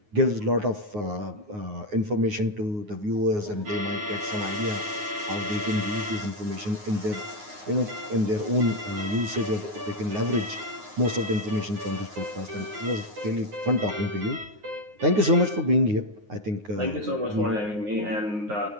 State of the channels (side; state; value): left; late; 9.6 ms